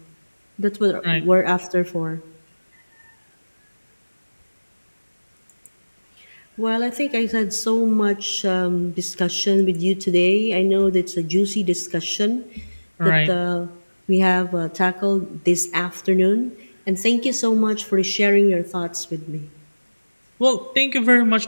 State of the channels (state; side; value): inverted; both; correlation -1.00